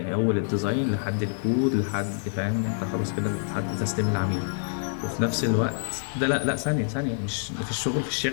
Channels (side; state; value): right; silent; digital silence